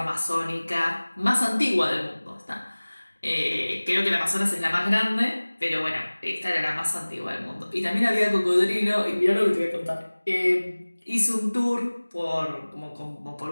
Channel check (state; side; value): inverted; both; correlation -1.00